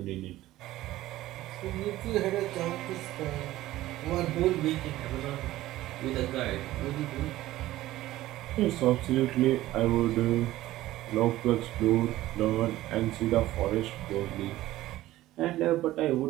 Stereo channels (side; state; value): left; quieter; 15.8 dB